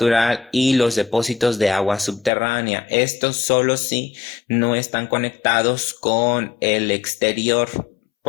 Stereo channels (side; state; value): right; drops out; at 2.3 s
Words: y los depósitos de agua subterránea. Estos solo si no están conectados con el exterior,